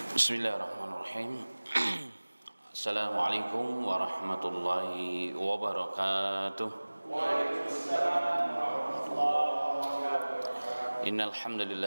Bismillahirrahmanirrahim. Assalamualaikum warahmatullahi wabarakatuh. Innal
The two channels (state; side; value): inverted; both; correlation -1.00